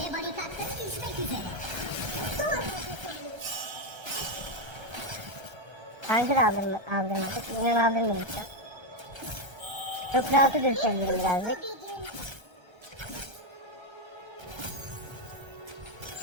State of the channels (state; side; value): late; left; 1.3 ms